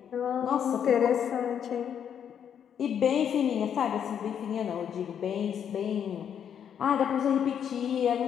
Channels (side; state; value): right; quieter; 8.5 dB